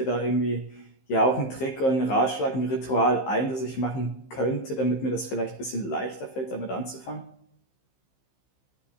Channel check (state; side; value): late; right; 15 ms